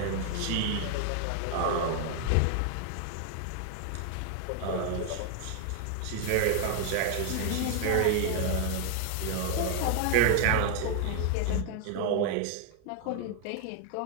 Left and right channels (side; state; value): both; different; correlation 0.00